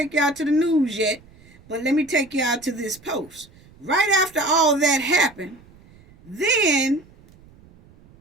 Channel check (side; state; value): right; noise; rumble, 26 dB below the sound